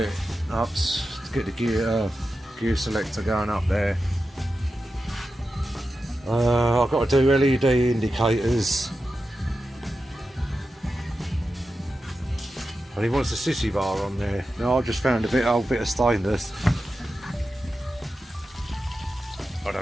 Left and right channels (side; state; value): both; normal; correlation 0.91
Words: up to get the gear selector going up there. I've got to do LED indicators. And he wants a sissy bar on there. No, I just found a old bit of stainless. I